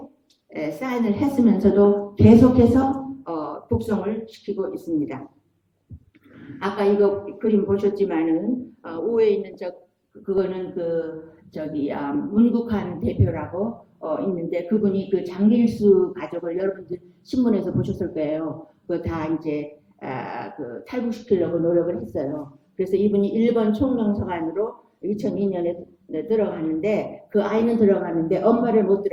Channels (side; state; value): both; identical; correlation 1.00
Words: 사인을 했으면서도 계속해서 북송을 시키고 있습니다. 아까 이거 그림 보셨지만은 우에 있는 그거는 문국한 대표라고 있는데 그분이 그 장길수 가족을 여러분들 신문에서 보셨을 거예요. 그거 다 이제 그 탈북시키려고 노력을 했어요. 그래서 이분이 일본 총명서관으로 2002년에 들어가는데 그 아이는 들어가는데 엄마를 못